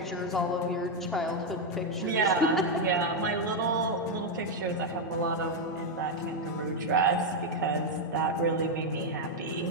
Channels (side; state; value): both; normal; correlation 0.02